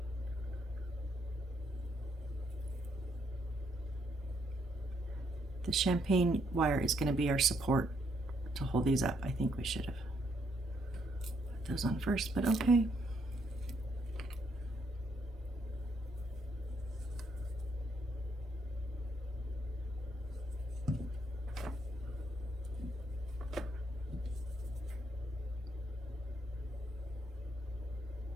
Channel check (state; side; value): normal; both; correlation 0.73